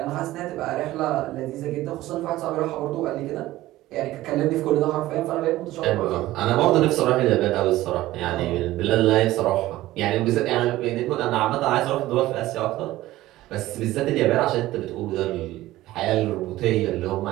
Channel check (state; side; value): quieter; left; 16.3 dB